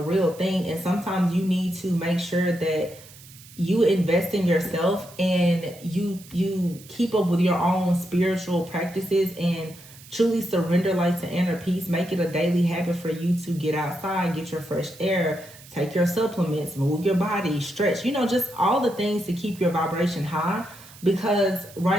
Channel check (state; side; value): noise; right; hiss, 20 dB below the sound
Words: thing. And sometimes you need to make sure that you invest in yourself and you keep up with your own spiritual practices and truly surrender like to inner peace. Make it a daily habit for you to get outside, get your fresh air, take your supplements, move your body, stretch, you know, just all the things to keep your vibration high. Because